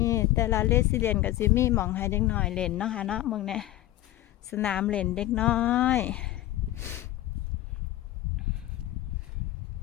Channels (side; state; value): right; quieter; 15.1 dB